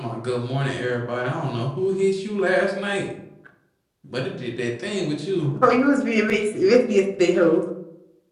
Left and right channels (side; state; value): both; identical; correlation 1.00